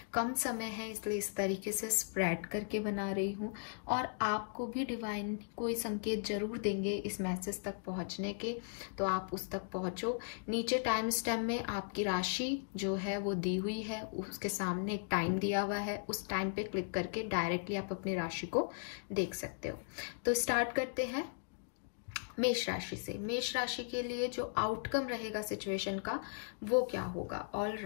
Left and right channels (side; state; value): right; silent; digital silence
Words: कम समय है इसलिए इस तरीके से स्प्रेड करके बना रही हूँ, और आपको भी डिवाइन कोई संकेत जरूर देंगे इस मैसेज तक पहुंचने के, तो आप उस तक पहुंचो। नीचे टाइम स्टैम्प में आपकी राशि जो है वो दी हुई है, उसके सामने एक टाइम दिया हुआ है, उस टाइम पे क्लिक करके डायरेक्टली आप अपनी राशि को देख सकते हो। तो स्टार्ट करते हैं मेष राशि से। मेष राशि के लिए जो आउटकम रहेगा सिचुएशन का वो क्या होगा। ऑल